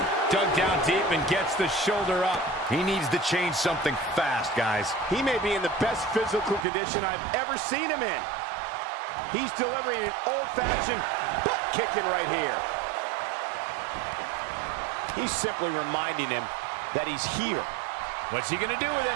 Dug down deep and gets the shoulder up. He needs to change something fast, guys. He may be in the best physical condition I've ever seen him in. He's delivering an old-fashioned butt kicking right here. He's simply reminding him that he's here. What's he gonna do with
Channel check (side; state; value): left; drops out; at 6.7 s